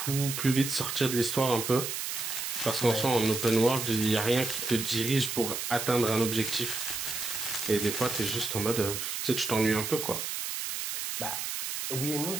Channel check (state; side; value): noise; right; hiss, 4 dB below the sound